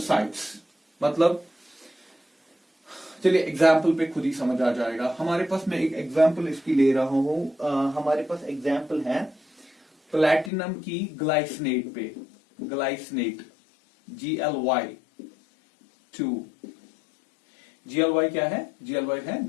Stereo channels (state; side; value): drops out; right; at 10.5 s